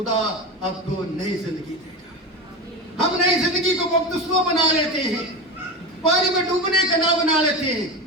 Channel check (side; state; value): both; normal; correlation 0.23